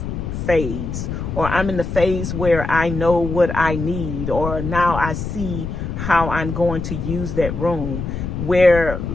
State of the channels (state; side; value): noise; left; rumble, 5 dB below the sound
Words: phase, or I'm in the phase where I know what I need, or now I see how I'm going to use that room.